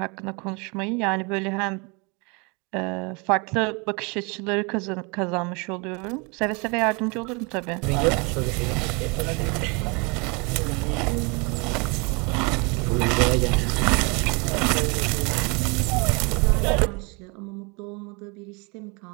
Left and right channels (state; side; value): quieter; left; 30.4 dB